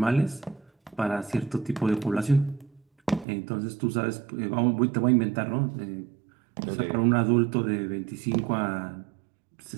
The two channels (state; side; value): drops out; left; at 3.2 s